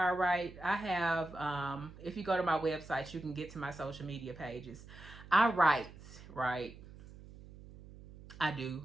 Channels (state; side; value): noise; right; hum, 17 dB below the sound